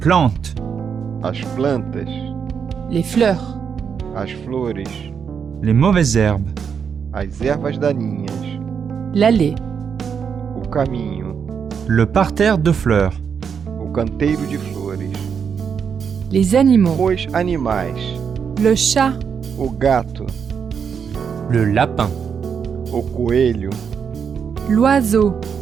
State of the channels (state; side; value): quieter; left; 6.9 dB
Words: As plantas. Les fleurs. As flores. Les mauvaises herbes. As ervas daninhas. L'allée. O caminho. Le parterre de fleurs. O canteiro de flores. Les animaux. Os animais. Le chat. O gato. Le lapin. O coelho. L'oiseau.